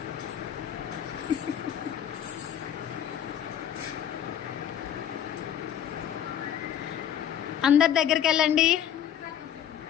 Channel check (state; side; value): quieter; right; 9.9 dB